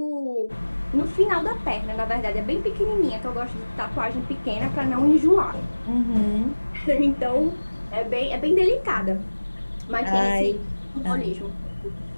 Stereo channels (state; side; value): inverted; both; correlation -1.00